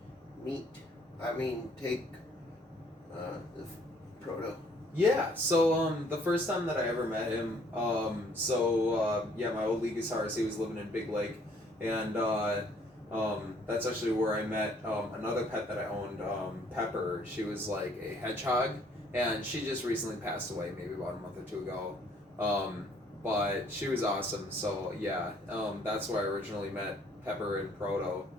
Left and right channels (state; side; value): normal; both; correlation 0.62